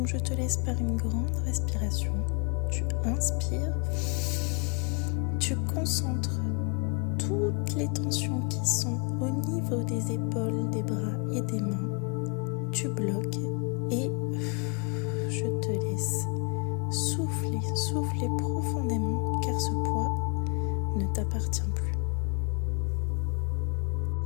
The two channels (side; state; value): right; quieter; 30.6 dB